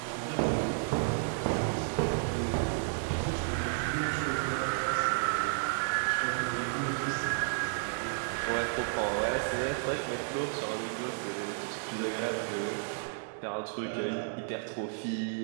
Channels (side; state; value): left; silent; digital silence